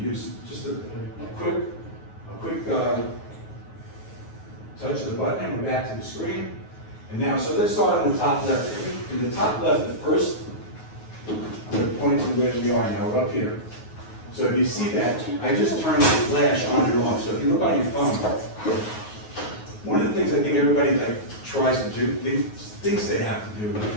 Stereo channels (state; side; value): late; right; 9.4 ms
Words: use. Just a quick touch of the button, and we're back to the screen. And now, so let's start on the top left. In the top left, the first, I'm going to point to where we are now. We're up here. So if you see that, I just turned the flash on and off. So if you look on your phone, one of the things I think everybody like tries to do, thinks they have to do